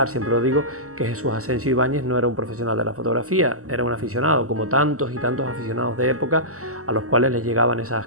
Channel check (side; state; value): left; late; 0.65 ms